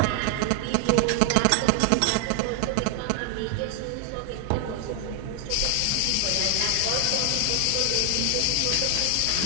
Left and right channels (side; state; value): both; different; correlation 0.00